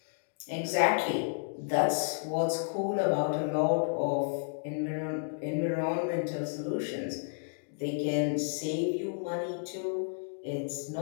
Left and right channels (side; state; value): right; silent; digital silence